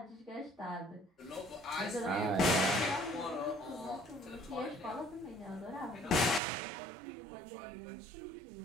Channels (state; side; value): drops out; left; at 6.4 s